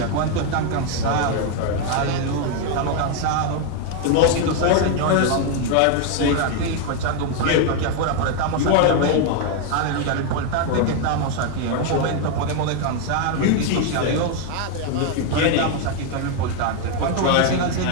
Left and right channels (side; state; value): both; different; correlation 0.01